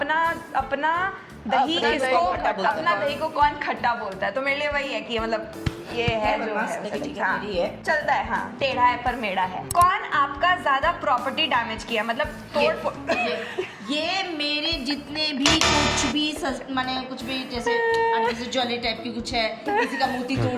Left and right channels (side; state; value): both; identical; correlation 1.00